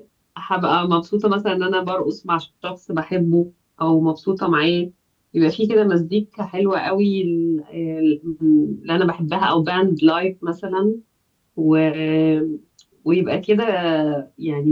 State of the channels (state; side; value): identical; both; correlation 1.00